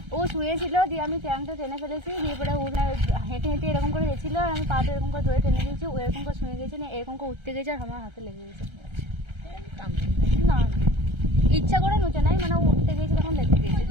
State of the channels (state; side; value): late; left; 1.3 ms